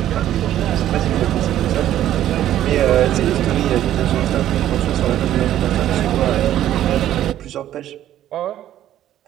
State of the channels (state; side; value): quieter; left; 12.2 dB